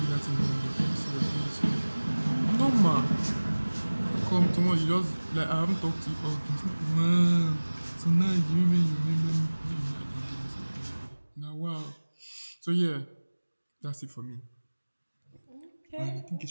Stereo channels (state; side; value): inverted; both; correlation -1.00